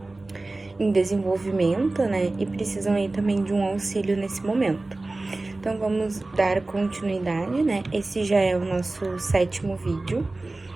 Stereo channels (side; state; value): left; quieter; 3.1 dB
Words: em desenvolvimento, né? E precisam aí também de um auxílio nesse momento. Então vamos dar continuidade, né? Esse já é o nosso 7º vídeo,